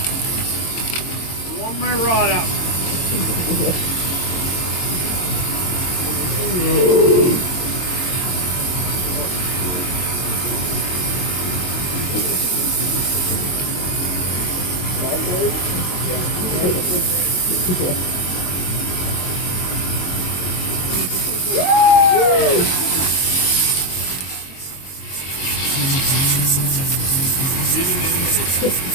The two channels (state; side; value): late; right; 22 ms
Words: Warm my rod up.